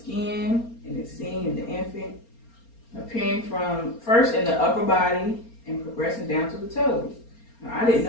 and it's seen in the infant, appearing from first in the upper body and progressing down to the toes. Now, I didn't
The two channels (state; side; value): late; right; 4.3 ms